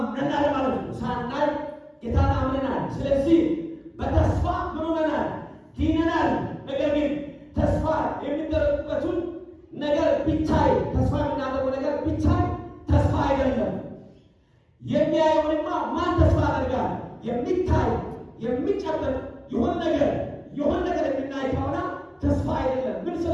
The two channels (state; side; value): identical; both; correlation 1.00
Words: ማለት ነው። ሳናይ ጌታን አምነናል። ስለዚህ በተስፋ ምን ሆነናል? ድነናል። ነገር ግን ተስፋ የሚደረግበትን ነገር ቢታይ፣ ተስፋ የምናደርገው ነገር ቢታይ ተስፋ አይደለም። የሚያየውንማ ማን ተስፋ ያደርጋል? የሚታይ የሚጨበጥ የሆነ ነገር የምናይ ከሆነ ተስፋ አይደለም። ምን